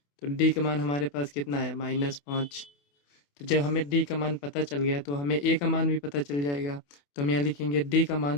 तो D का मान हमारे पास कितना आया, -5। तो जब हमें D का मान पता चल गया तो हमें A का मान भी पता चल जाएगा। तो हम यहाँ लिखेंगे D का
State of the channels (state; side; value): late; right; 28 ms